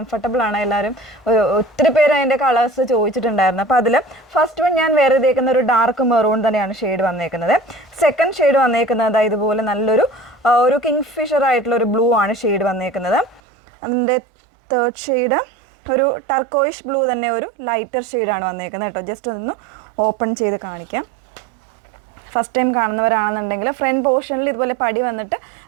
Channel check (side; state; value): left; drops out; at 13.4 s